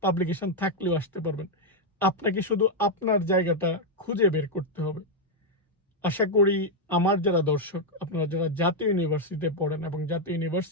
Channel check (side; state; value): both; normal; correlation 0.00